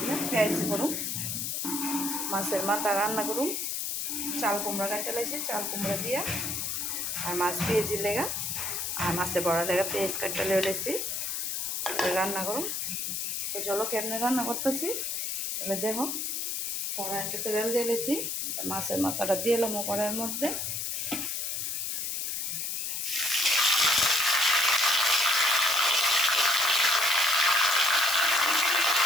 পেঁয়াজ করুন, মাছের মাথা রান্না করুন। চাল কুমড়া কাটতে লাগছে, চাল কুমড়া দিয়া আর মাছ পেঁয়াজি লেগা আর মাছের বড়া লেগা পেঁয়াজ কাটতে লেগেছি রান্না করুন। তো চলো কেমনে রান্না করতেছি তাহলে দেখো। কড়াইতে তেল দিয়ে লেছি, মাছের মাথাটা দিয়ে এলাম কড়াইয়ের মধ্যে।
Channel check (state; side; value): noise; left; hiss, 2 dB below the sound